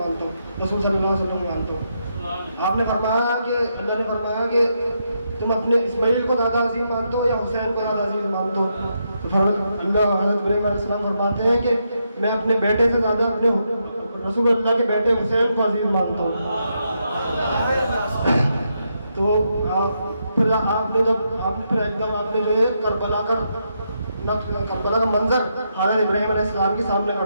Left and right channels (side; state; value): both; inverted; correlation -0.81